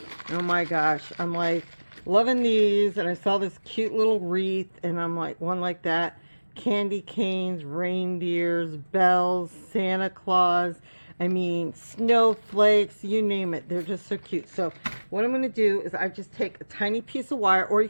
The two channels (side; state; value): both; inverted; correlation -1.00